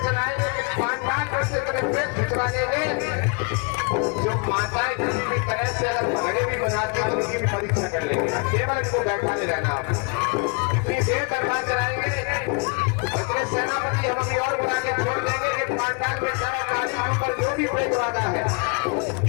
चलाएंगे कि 5 कैसे करें प्रेस खिंचवाने में जो माताएं किसी भी तरह से अगर घड़े भी बनाती हैं उनकी भी परीक्षा कर लेंगे। केवल इसको बैठा नहीं रहना, आप इतनी देर दरबार चलाएंगे तो सेनापति हम और बना के छोड़ देंगे कि 5 के सारा गाड़ी के ऊपर जो भी प्रेत वाला है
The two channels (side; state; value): right; quieter; 33.6 dB